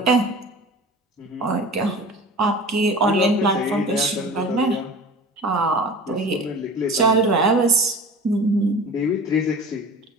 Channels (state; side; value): normal; both; correlation 0.38